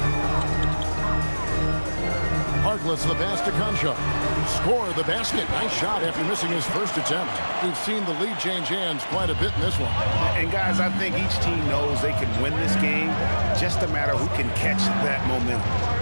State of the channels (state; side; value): inverted; both; correlation -1.00